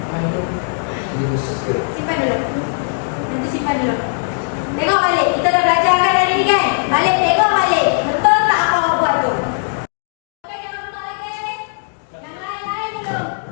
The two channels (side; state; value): right; silent; digital silence